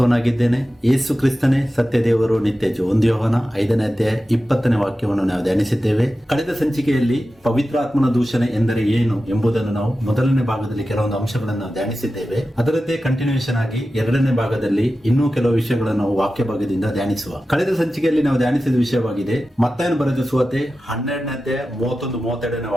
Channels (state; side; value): normal; both; correlation 0.93